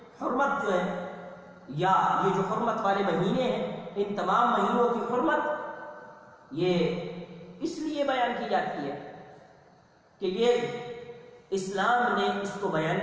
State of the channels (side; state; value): both; identical; correlation 1.00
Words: حرمت جو ہے، یا یہ جو حرمت والے مہینے ہیں، ان تمام مہینوں کی حرمت یہ اس لیے بیان کی جاتی ہے کہ یہ اسلام نے اس کو بیان